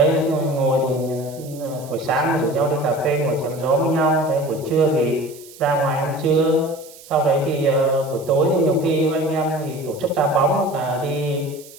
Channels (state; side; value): noise; right; hiss, 20 dB below the sound